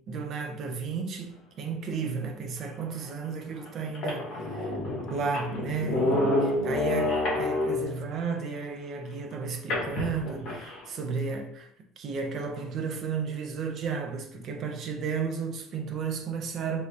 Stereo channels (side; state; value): both; normal; correlation 0.42